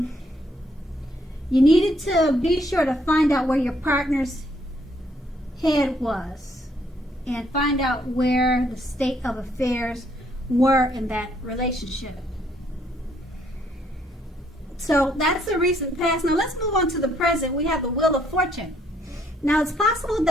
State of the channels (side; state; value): both; normal; correlation 0.68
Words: you needed to be sure to find out where your partner's head was and find out where the state of affairs were in that relationship. So that's the recent past. Now let's move on to the present. We have the Wheel of Fortune. Now it's possible